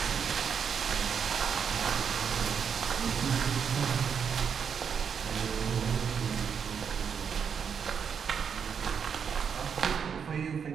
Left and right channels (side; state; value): left; quieter; 7.0 dB